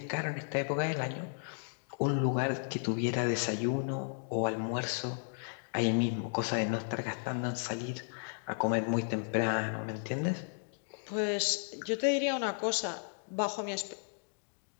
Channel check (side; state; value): right; silent; digital silence